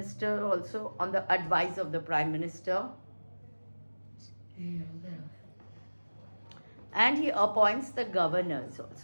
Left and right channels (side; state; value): both; inverted; correlation -1.00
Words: also on the advice of the prime minister. And he appoints the governors